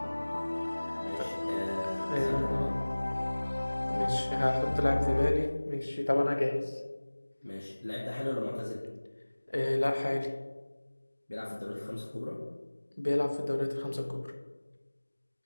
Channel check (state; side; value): inverted; both; correlation -1.00